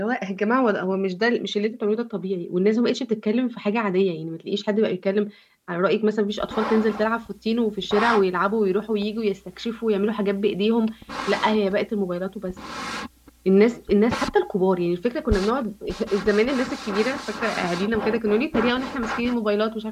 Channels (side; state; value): both; identical; correlation 1.00